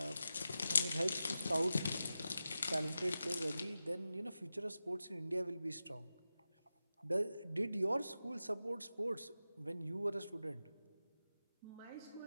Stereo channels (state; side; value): inverted; both; correlation -0.92